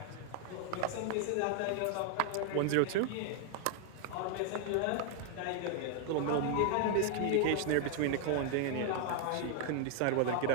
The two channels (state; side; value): different; both; correlation 0.00